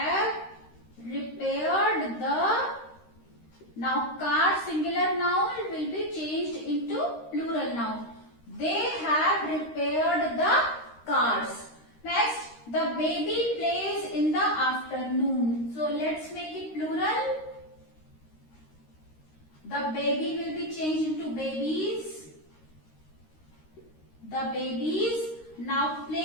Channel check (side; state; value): right; late; 13 ms